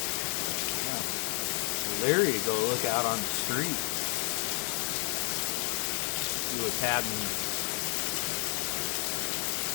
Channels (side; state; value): right; quieter; 38.4 dB